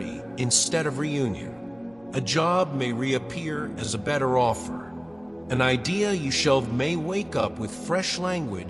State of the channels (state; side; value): noise; left; rumble, 29 dB below the sound